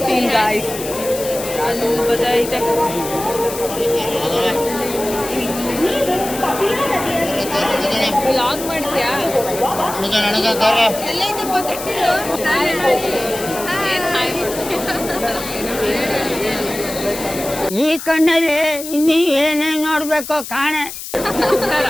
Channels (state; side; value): noise; left; hiss, 10 dB below the sound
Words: guys. ಅಲ್ಲಿ ಬದೈತೆ. ವ್ಲಾಗ್ ಮಾಡ್ತೀಯಾ? ಈ ಕಣ್ಣಲ್ಲಿ ಇನ್ನೀ ಏನೇನು ನೋಡ್ಬೇಕು ಕಾಣೆ.